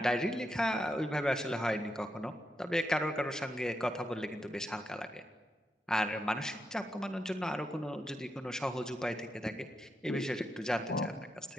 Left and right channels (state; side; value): normal; both; correlation 0.84